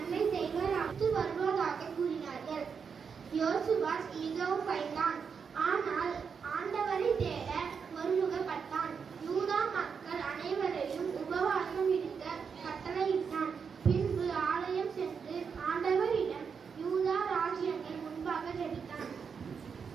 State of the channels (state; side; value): quieter; left; 6.2 dB